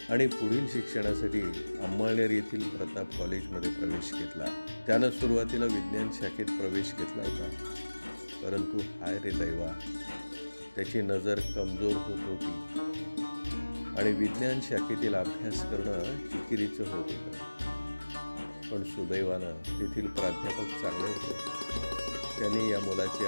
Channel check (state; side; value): inverted; both; correlation -1.00